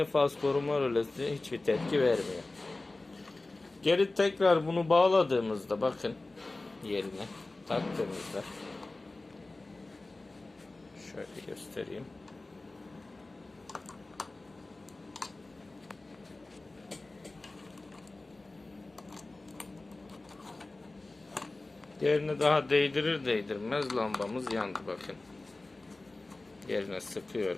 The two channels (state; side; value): quieter; right; 3.1 dB